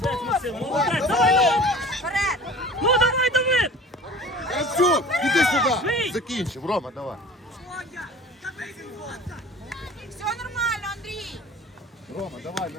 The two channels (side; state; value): both; normal; correlation 0.42